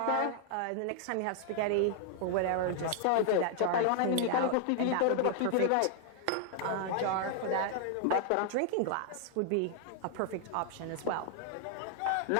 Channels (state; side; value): different; both; correlation 0.00